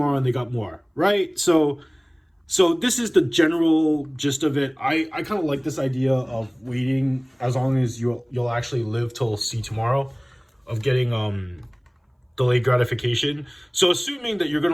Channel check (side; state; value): both; identical; correlation 1.00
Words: and they got more, right? So this is the general gist of it. I kind of like this idea of waiting as long as you'll actually live till see tomorrow, of getting delayed gratification. So assuming that you're